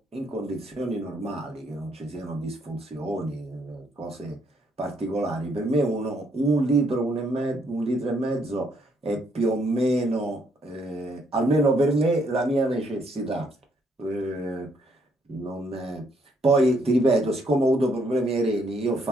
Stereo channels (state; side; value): normal; both; correlation 0.71